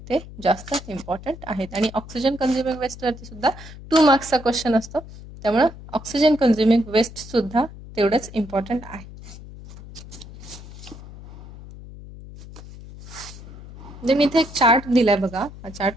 ते जास्त इम्पॉर्टंट आहेत. आणि ऑक्सिजन कन्झ्युमिंग वेस्टवरती सुद्धा 2 मार्क्सचा क्वेश्चन असतो, त्यामुळं ऑक्सिजन कन्झ्युमिंग वेस्ट सुद्धा तेवढंच इम्पॉर्टंट आहे. देन इथे एक चार्ट दिलाय बघा. हा चार्ट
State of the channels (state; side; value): noise; left; hum, 16 dB below the sound